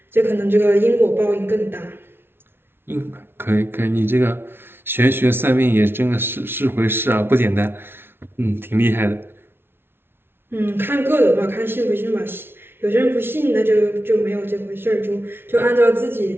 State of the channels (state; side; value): late; left; 0.11 ms